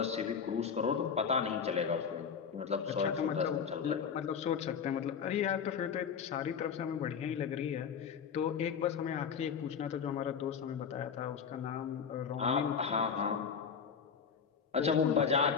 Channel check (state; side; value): quieter; right; 6.7 dB